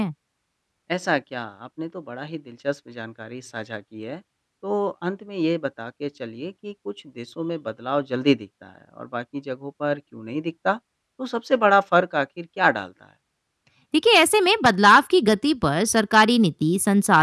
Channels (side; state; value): both; identical; correlation 1.00